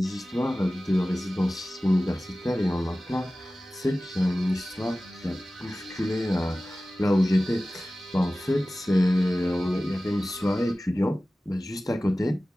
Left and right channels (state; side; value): normal; both; correlation 0.96